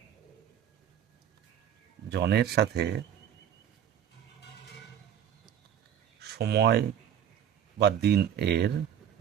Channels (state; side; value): quieter; left; 9.5 dB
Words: জনের সাথে সময় বা দিন এর